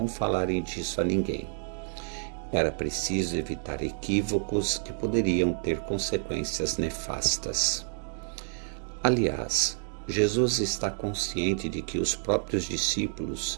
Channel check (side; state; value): left; silent; digital silence